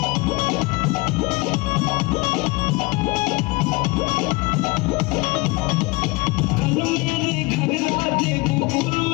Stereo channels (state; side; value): quieter; right; 24.3 dB